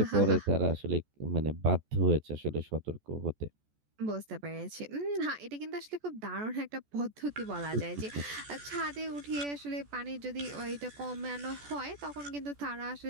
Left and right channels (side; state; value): left; late; 14 ms